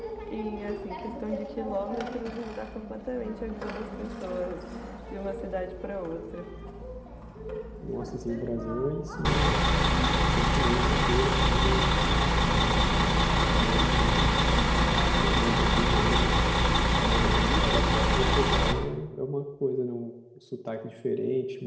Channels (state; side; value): identical; both; correlation 1.00